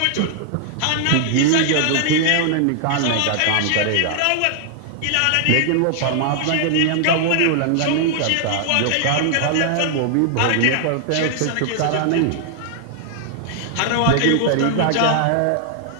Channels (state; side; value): different; both; correlation 0.00